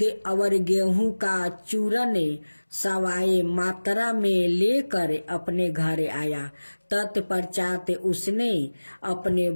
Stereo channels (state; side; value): inverted; both; correlation -1.00